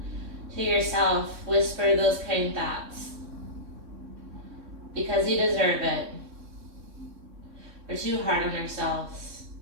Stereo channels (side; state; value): left; late; 3.6 ms